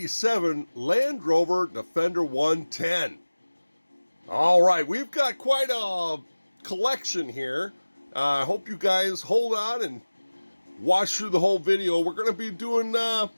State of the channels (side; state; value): both; inverted; correlation -1.00